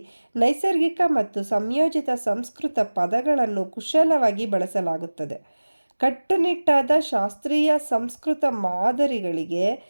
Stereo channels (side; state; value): both; inverted; correlation -1.00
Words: ನೈಸರ್ಗಿಕ ಮತ್ತು ಸಂಯೋಜಿತ ಸಂಸ್ಕೃತ ಪದಗಳನ್ನು ಕುಶಲವಾಗಿ ಬಳಸಲಾಗುತ್ತದೆ. ಕಟ್ಟುನಿಟ್ಟಾದ ಶಾಸ್ತ್ರೀಯ ಸಂಸ್ಕೃತ ಮಾದರಿಗಳಿಗೆ